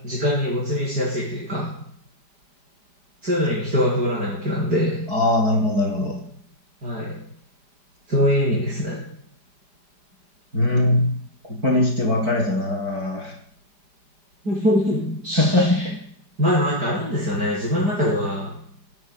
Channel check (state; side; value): late; left; 5.0 ms